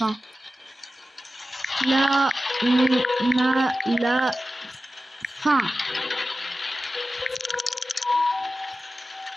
Là, on a la fin.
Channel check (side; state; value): both; normal; correlation 0.94